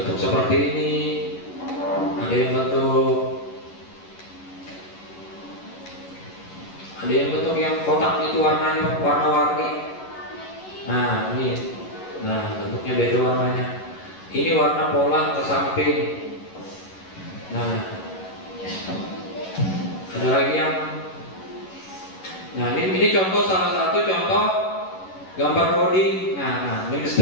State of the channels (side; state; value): right; late; 11 ms